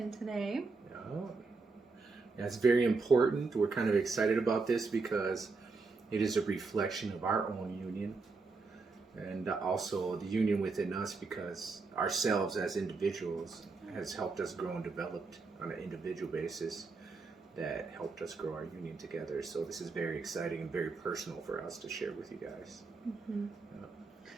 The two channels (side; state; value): left; quieter; 4.2 dB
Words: today. Yeah, it's very important. We're kind of excited about this because it is a reflection of our own union and also the union within us, because ourselves as individuals has helped us grow and developed on an individual basis that helped us grow our union together. So this is very exciting and very personal for us to share with you guys. Mm-hmm.